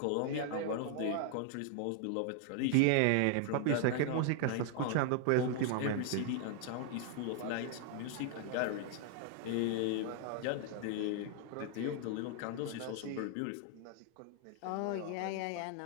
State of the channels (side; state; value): both; different; correlation 0.00